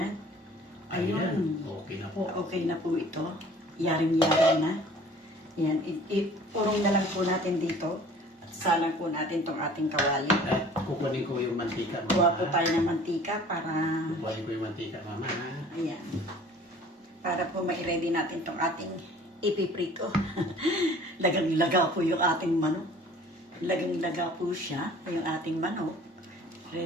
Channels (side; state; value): both; normal; correlation 0.49